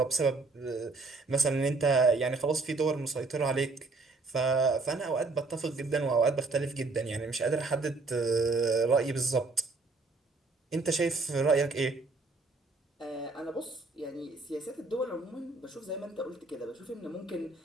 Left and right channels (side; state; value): left; quieter; 3.7 dB